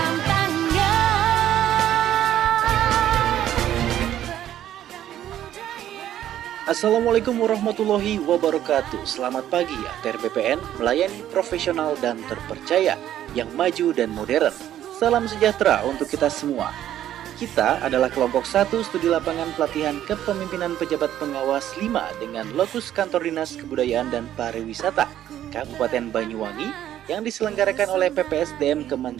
tangan. Assalamualaikum warahmatullahi wabarakatuh. Selamat pagi, ATR BPN melayani profesional dan terpercaya, yang maju dan modern. Salam sejahtera untuk kita semua. Kita adalah kelompok 1 studi lapangan pelatihan kepemimpinan pejabat pengawas 5 dengan lokus kantor Dinas Kebudayaan dan Pariwisata Kabupaten Banyuwangi yang diselenggarakan oleh PPSDM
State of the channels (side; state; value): left; quieter; 11.7 dB